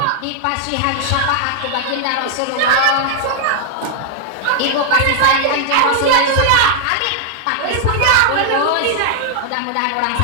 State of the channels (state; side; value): different; both; correlation -0.01